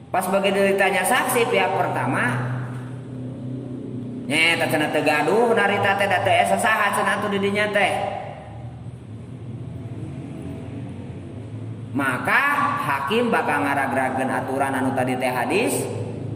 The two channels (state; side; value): identical; both; correlation 1.00